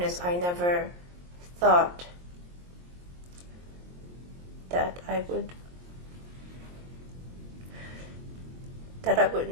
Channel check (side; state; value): left; late; 23 ms